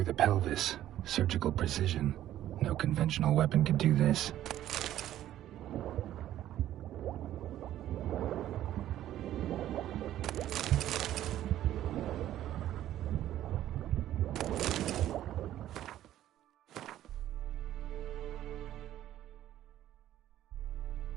the pelvis. Surgical precision. No conventional weapon could do this.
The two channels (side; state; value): left; quieter; 12.7 dB